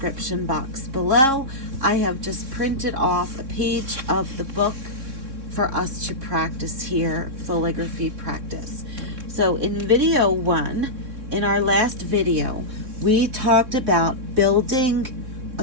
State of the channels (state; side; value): late; left; 3.6 ms